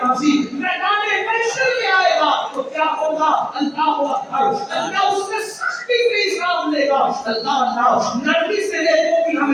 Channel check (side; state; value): both; identical; correlation 1.00